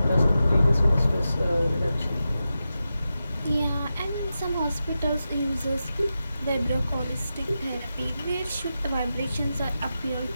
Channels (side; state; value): both; inverted; correlation -0.91